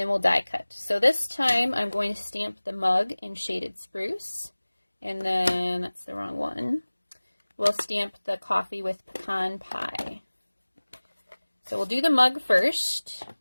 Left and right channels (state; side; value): inverted; both; correlation -1.00